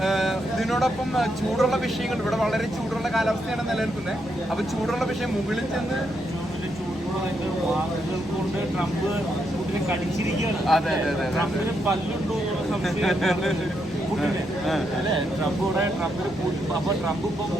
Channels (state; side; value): normal; both; correlation 0.80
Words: ഇതിനോടൊപ്പം ചൂടുള്ള വിഷയങ്ങൾ, ഇവിടെ വളരെ ചൂടുള്ള കാലാവസ്ഥയാണ് നിലനിൽക്കുന്നത്. അപ്പൊ ചൂടുള്ള വിഷയം മുകളിൽ ചെന്ന് കൊണ്ട് ട്രംപ് പുടിനെ കടിച്ചിരിക്കുകയാണ്. അതെ അതെ അതെ, ട്രംപിന് പല്ലുണ്ടോ അല്ലെ? ട്രംപിന് അപ്പൊ ട്രംപ് ഇപ്പം